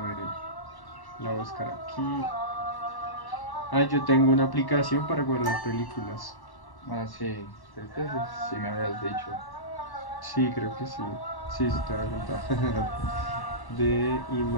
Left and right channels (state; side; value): late; right; 1.1 ms